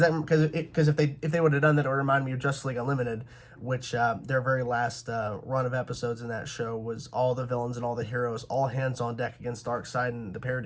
if they would have done that, it would remind me of Justice League Unlimited, which their very last run of episodes in that show was all the villains and all the heroes, all hands on deck against Darkseid and the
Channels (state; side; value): identical; both; correlation 1.00